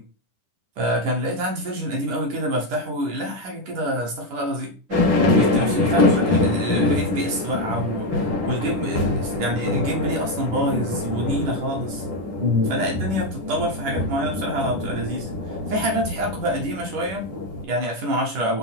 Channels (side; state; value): left; late; 10 ms